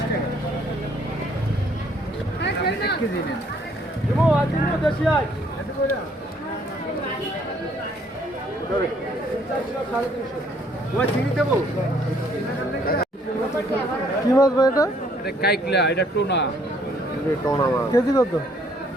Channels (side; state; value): both; normal; correlation 0.64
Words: কি মাছ ভাই এটা? এটা কাইকলা, এটা টোনা। কেজি কত?